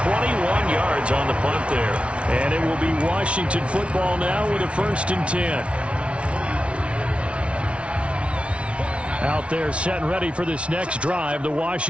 yards on the punt there. And it will be Washington football now with a 1st and 10. Out there set and ready for this next drive, the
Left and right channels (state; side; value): late; left; 0.061 ms